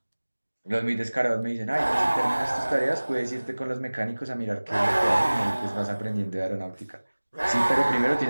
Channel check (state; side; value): inverted; both; correlation -1.00